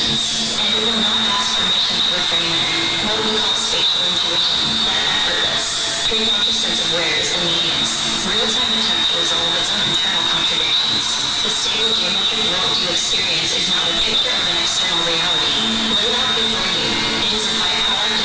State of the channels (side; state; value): right; noise; rumble, 22 dB below the sound